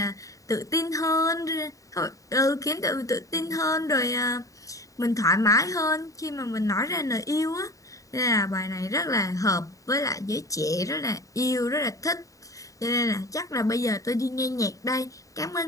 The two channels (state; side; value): late; right; 0.16 ms